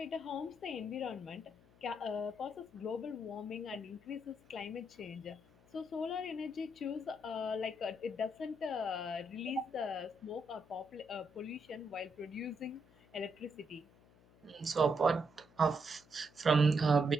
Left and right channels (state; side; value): noise; left; hum, 27 dB below the sound